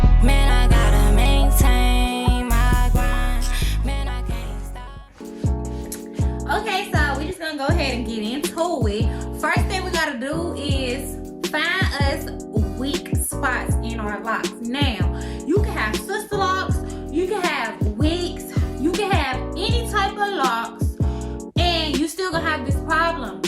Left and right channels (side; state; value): both; identical; correlation 1.00